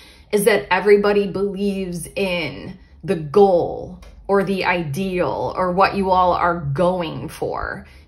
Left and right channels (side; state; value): both; identical; correlation 1.00